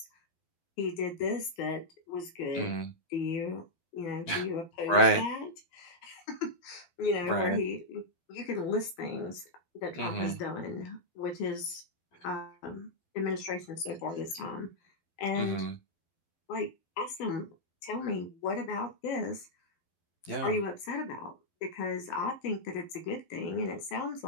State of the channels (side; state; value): right; late; 12 ms